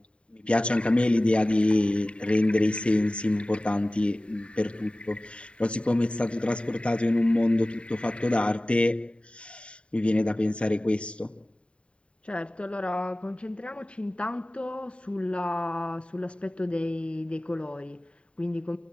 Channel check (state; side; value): late; right; 0.058 ms